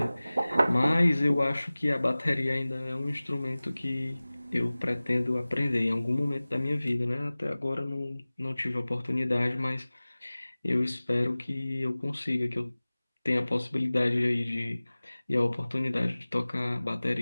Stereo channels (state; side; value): inverted; both; correlation -0.99